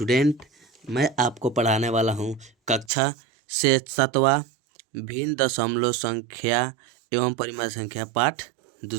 मैं आपको पढ़ाने वाला हूँ कक्षा से 7वां भिन्न दशमलव संख्या एवं परिमाण संख्या पाठ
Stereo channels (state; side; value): drops out; left; at 2.9 s